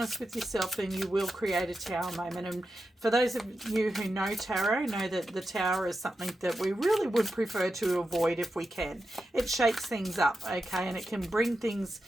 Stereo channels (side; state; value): both; normal; correlation 0.89